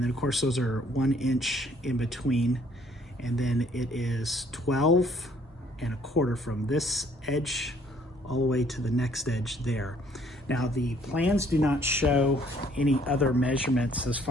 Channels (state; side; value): normal; both; correlation 0.62